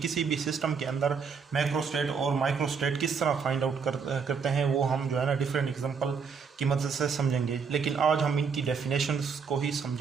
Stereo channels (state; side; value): quieter; left; 5.8 dB